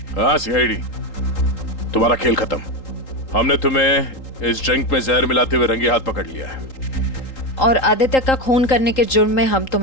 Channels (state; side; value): late; right; 3.8 ms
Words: हाँ, सीआईडी। तुम्हारा खेल खत्म। हमने तुम्हें इस ड्रिंक में जहर मिलाते हुए रंगे हाथ पकड़ लिया है। और आदित्य का खून करने के जुर्म में हम